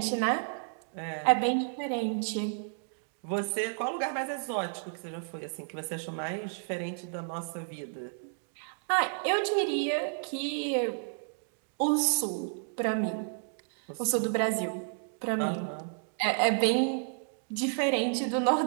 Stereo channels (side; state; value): left; silent; digital silence